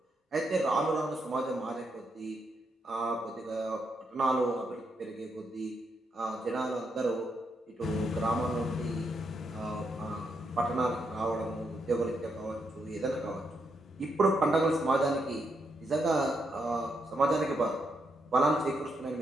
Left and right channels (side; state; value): both; normal; correlation 0.80